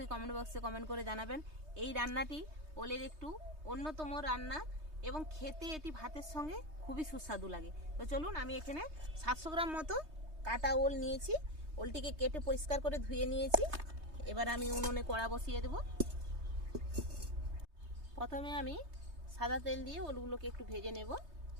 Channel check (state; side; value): late; left; 3.2 ms